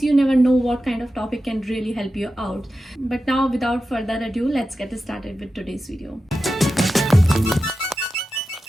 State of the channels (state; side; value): normal; both; correlation 0.92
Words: you never know what kind of topic can really help you out. But now without further ado, let's get started with today's video.